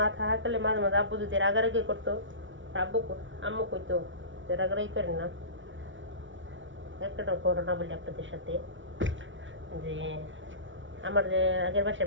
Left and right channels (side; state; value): left; late; 0.56 ms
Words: থাকলে মাঝে মাঝে আব্বু যদি রাগারাগি করতো, আম্মু কইতো যে রাগারাগি করেন না। একটা ঘটনা বলি আপনাদের সাথে, যে আমার যে আগের